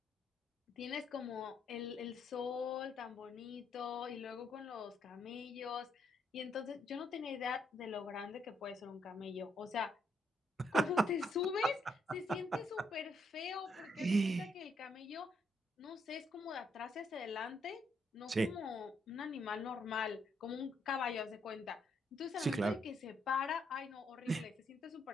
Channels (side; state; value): both; normal; correlation 0.75